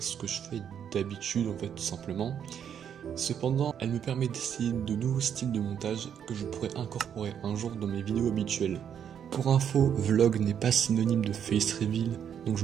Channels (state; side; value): quieter; left; 8.6 dB